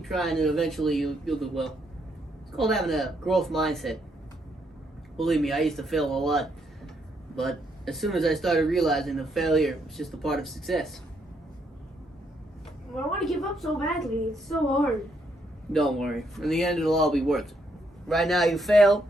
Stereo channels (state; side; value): normal; both; correlation 0.75